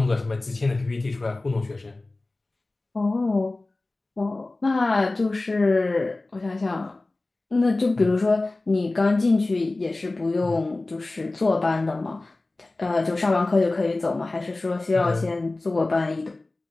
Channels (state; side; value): quieter; right; 3.0 dB